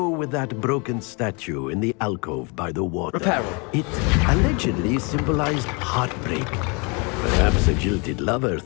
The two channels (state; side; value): quieter; right; 31.3 dB